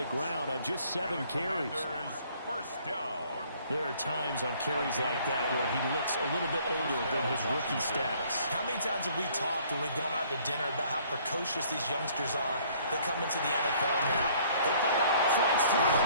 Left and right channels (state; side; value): inverted; both; correlation -0.59